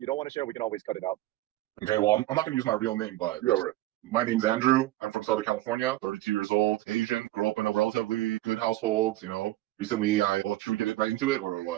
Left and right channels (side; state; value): left; quieter; 16.6 dB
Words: don't want to share, we can always cut it out. Okay, well, I'm not going to use my real name, but my name's Andrew. I'm from Southern California, 32 years old, Asian, grew up in a relatively good household, Recently, should we get right into it or